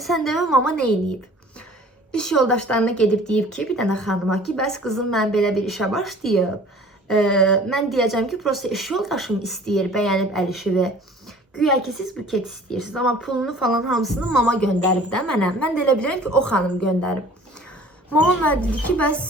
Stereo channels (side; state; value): both; normal; correlation 0.48